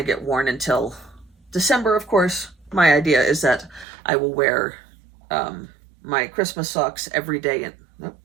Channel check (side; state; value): left; drops out; at 3.9 s